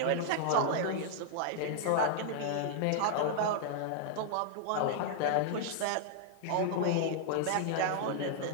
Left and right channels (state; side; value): different; both; correlation -0.01